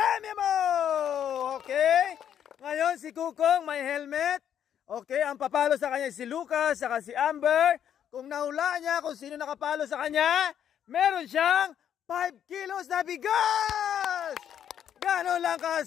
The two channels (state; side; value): quieter; right; 9.5 dB